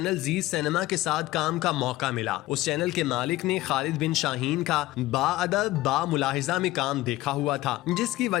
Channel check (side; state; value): right; quieter; 17.1 dB